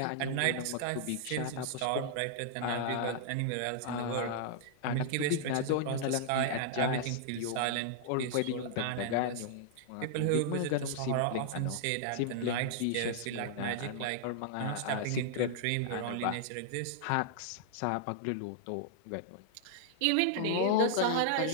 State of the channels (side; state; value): both; different; correlation -0.01